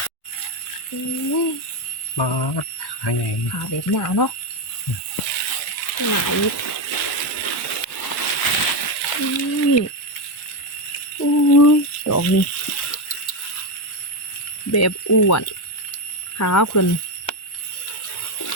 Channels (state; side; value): late; right; 1.2 ms